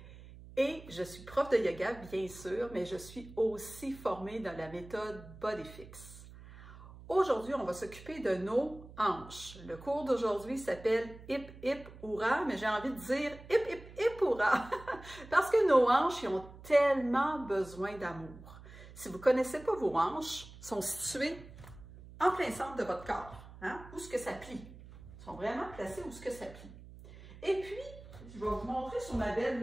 et je suis prof de yoga, bien sûr, mais je suis aussi formée dans la méthode BodyFix. Aujourd'hui, on va s'occuper de nos hanches. Le cours d'aujourd'hui s'appelle Hip Hip Hourra, mais j'ai envie de dire Hip Hip Hip Hourra parce que nos hanches ils ont tellement besoin d'amour. Si vous ne connaissez pas vos hanches, elles sont situées en plein centre de votre corps. Où est-ce que ça plie? Ils sont vraiment placés où est-ce que ça plie. Et puis, je vais vous montrer sur ma belle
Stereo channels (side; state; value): right; noise; hum, 17 dB below the sound